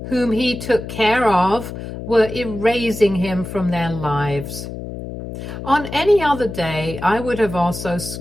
whom he took care of, were erasing him from their lives. On any other day, I would have also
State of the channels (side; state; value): left; noise; hum, 9 dB below the sound